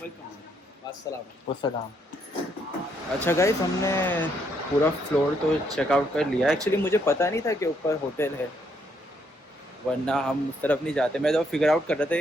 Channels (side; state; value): both; normal; correlation 0.73